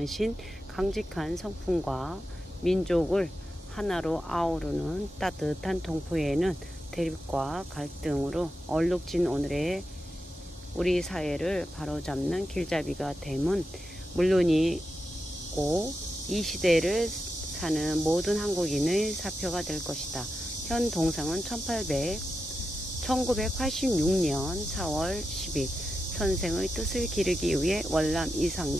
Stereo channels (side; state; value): both; normal; correlation 0.89